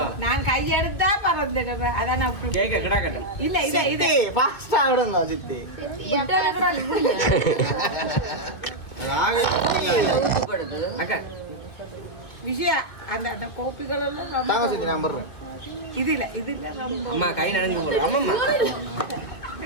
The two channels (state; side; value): late; right; 1.9 ms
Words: நான் கையெடுத்தா பறந்துடுவேன். அதான் கேக்க கிடா கட்டும் இல்ல இத இத ஃபாஸ்டா விடுங்க சித்தி. ஊத்துப்படுது அக்கா விஷயம் அந்த அந்த கோப்பிகள் எல்லாம் தாங்க சித்தி நான் பண்றேன். இதுல ரொம்ப அம்மா கை நடந்து போறோம். அம்மா